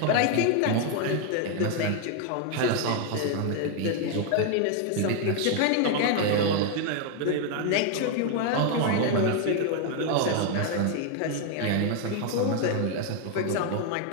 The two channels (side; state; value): both; different; correlation 0.01